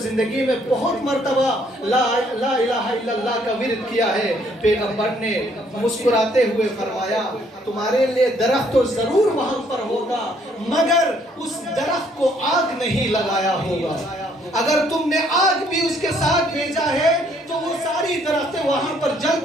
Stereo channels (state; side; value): normal; both; correlation 0.66